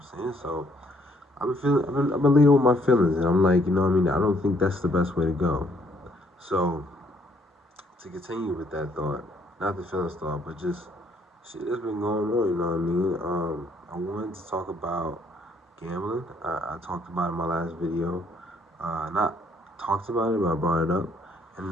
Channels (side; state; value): both; normal; correlation 0.67